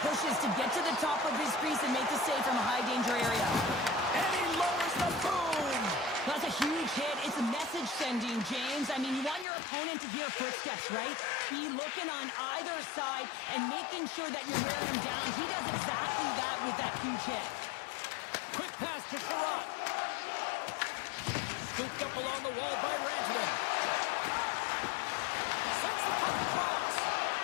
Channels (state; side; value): drops out; right; at 9.5 s